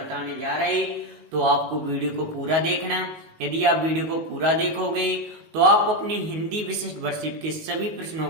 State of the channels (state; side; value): late; left; 19 ms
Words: जा रहे हैं, तो आपको वीडियो को पूरा देखना। यदि आप वीडियो को पूरा देखोगे तो आप अपनी हिंदी विशिष्ट वर्कशीट के सभी प्रश्नों